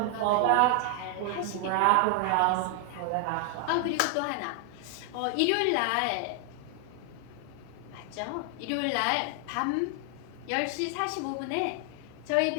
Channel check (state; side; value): different; both; correlation 0.00